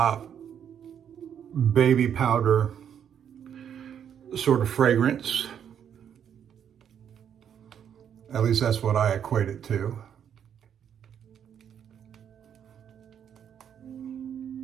baby powder sort of fragrance. At least that's what I equate it to.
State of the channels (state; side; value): quieter; left; 8.7 dB